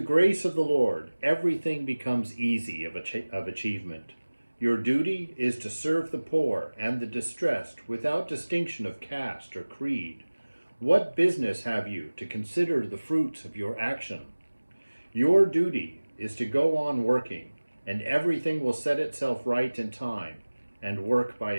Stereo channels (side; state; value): both; inverted; correlation -1.00